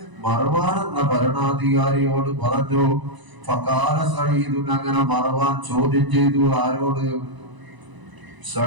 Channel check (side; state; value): left; late; 1.0 ms